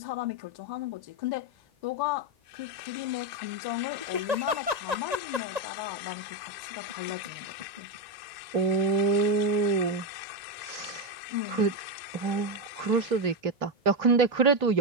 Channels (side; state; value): left; late; 1.9 ms